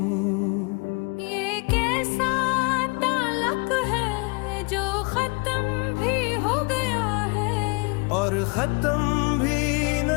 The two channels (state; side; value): quieter; right; 32.0 dB